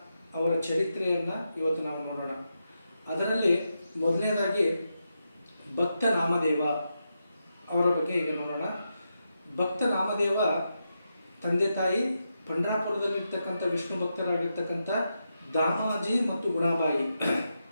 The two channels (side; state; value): both; inverted; correlation -0.86